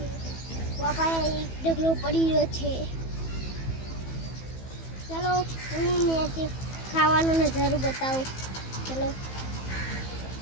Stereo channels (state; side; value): late; right; 15 ms